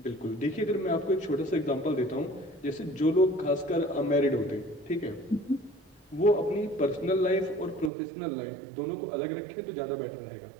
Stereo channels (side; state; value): left; drops out; at 7.9 s